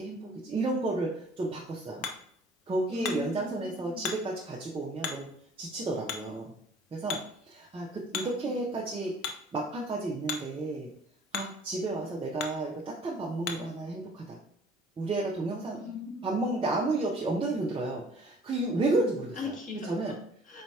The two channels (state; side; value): normal; both; correlation 0.53